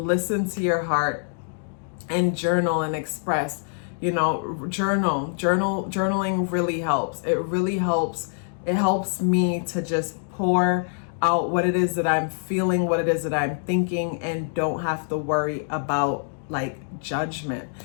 to your heart and journal and express. You know, journaling really helps. It really helps. It helps me to just pour out what it is that I'm feeling, what it is that I'm thinking, and don't have to worry about like judgment.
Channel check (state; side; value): silent; right; digital silence